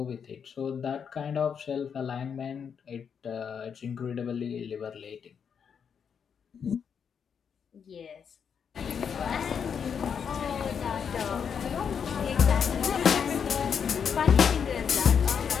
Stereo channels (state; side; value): quieter; right; 7.1 dB